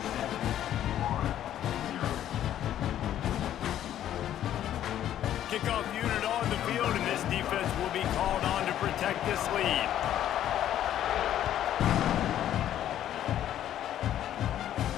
Kickoff unit on the field, and this defense will be called on to protect this lead.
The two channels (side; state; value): right; quieter; 11.4 dB